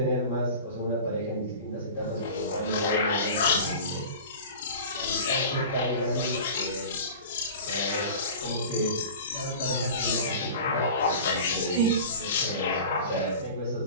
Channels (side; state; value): both; inverted; correlation -0.36